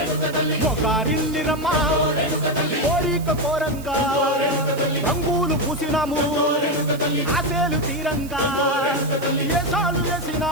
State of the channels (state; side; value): noise; right; hiss, 18 dB below the sound